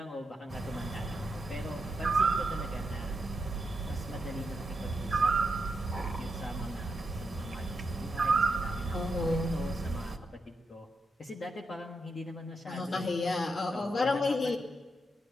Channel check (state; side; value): normal; both; correlation 0.84